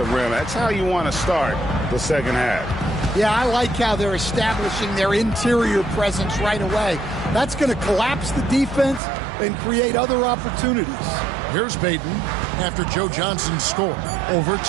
rim. That's how you want to start the second half. Yeah, I like how they're establishing their interior presence right away. That's going to collapse the defense and create other opportunities. Here's Payton after Joe Johnson's score over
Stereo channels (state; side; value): drops out; left; at 9.0 s